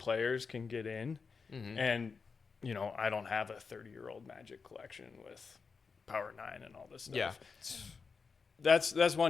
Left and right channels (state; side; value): quieter; right; 5.1 dB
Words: can get in. Mm-hmm. And, I don't have a 30-year-old Magic collection with Power 9 and all this stuff. Yeah. That's